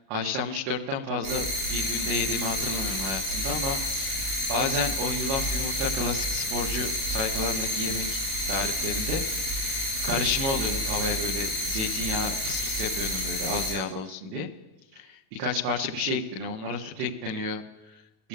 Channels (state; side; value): late; left; 37 ms